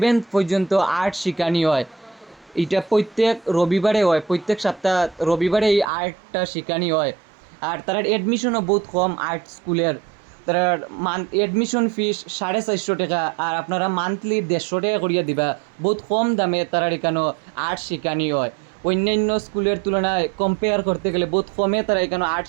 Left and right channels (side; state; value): left; drops out; at 5.9 s